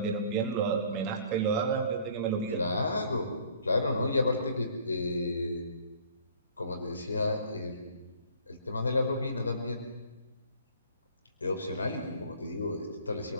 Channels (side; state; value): both; inverted; correlation -0.53